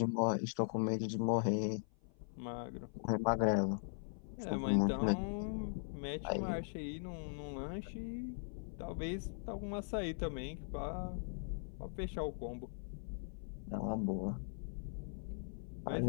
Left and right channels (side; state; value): right; silent; 51 dB below the other